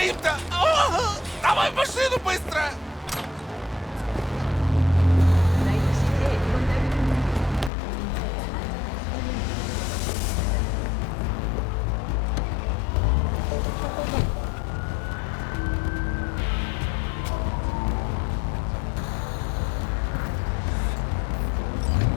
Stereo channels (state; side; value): drops out; right; at 7.7 s